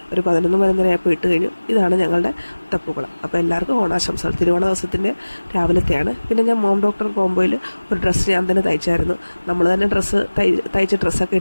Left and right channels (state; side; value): inverted; both; correlation -1.00